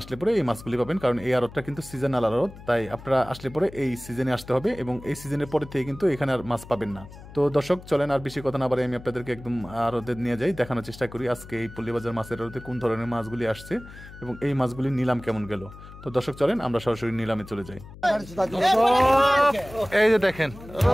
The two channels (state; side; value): noise; left; hum, 17 dB below the sound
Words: আসলে পরে এই মাছগুলি পাবেন, কারণ এই আড়তটা কিন্তু সিজনাল আড়ত, তাই আপনারা আসলে পরে এই সিজনে আসতে হবে এবং এই সিজনের পরে থেকে কিন্তু এখানে আর মাছ পাবেন না। তো দর্শক চলেন আর বেশি কথা না বলে আমি আপনাদেরকে একদম আড়তে নিয়ে যাই, দেখানোর চেষ্টা করি আজকে এই পল্লীবাজার মাছের আড়তে কোন ধরনের মাছগুলি আসছে এবং এই মাছগুলির নিলাম কেমন গেল। তো দর্শক চলেন আমরা সরাসরি নিলামে চলে যাই। এই যে দেখেন